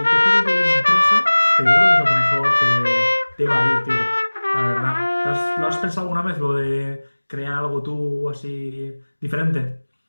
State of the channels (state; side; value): inverted; both; correlation -1.00